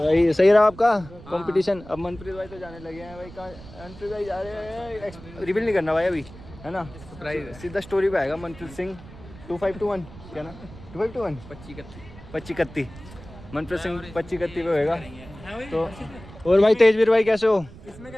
भाई सही रहा आपका कंपटीशन। अब मनप्रीत भाई तो जाने लगे हैं भाई। कहाँ मनप्रीत भाई जा रहे हैं? रिवील नहीं करना भाई अभी, है ना? सीधा स्टोरी पे आएगा। मनप्रीत सिंह 2521 क्या ना, 2521 2531 मनप्रीत सिंह 2531 पे होएगा। तो और भाई तेजवीर भाई कैसे हो? किसमें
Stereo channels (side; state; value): right; noise; rumble, 17 dB below the sound